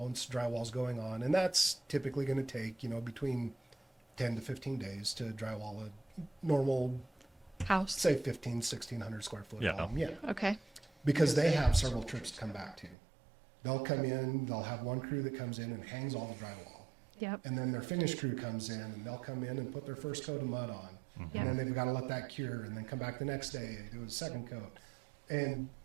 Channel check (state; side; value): drops out; left; at 13.0 s